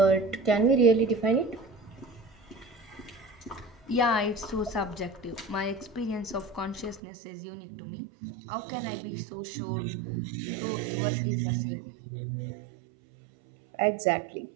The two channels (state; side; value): drops out; left; at 7.0 s